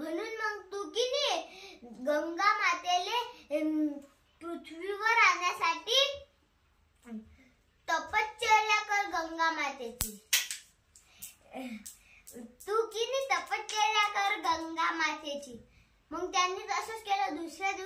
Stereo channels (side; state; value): both; identical; correlation 1.00